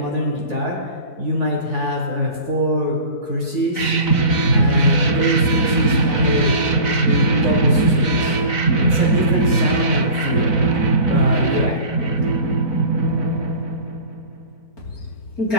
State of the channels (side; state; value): right; late; 4.0 ms